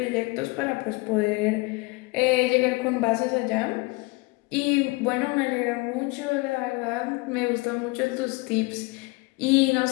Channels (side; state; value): right; quieter; 25.1 dB